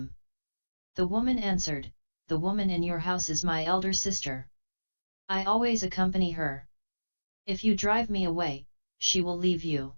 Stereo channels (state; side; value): inverted; both; correlation -1.00